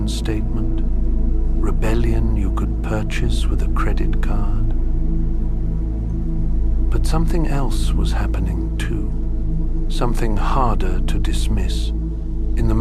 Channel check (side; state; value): both; identical; correlation 1.00